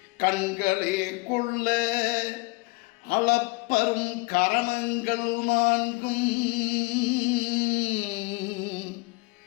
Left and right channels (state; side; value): quieter; right; 26.0 dB